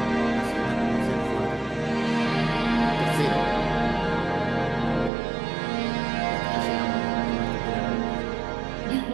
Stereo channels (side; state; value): left; drops out; at 5.1 s